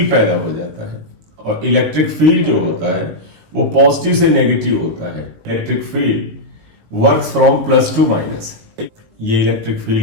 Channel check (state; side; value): late; left; 19 ms